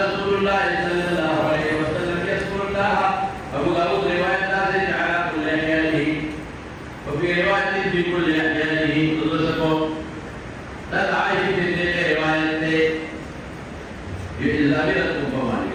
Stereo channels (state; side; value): identical; both; correlation 1.00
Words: الله صلى الله عليه وسلم يذكر الله أبو داود رواية نازل على كل أحيانه وفي وفي رواية في كل أحيانه تدرسكم تدعي في تلك رواية إلا بلدكم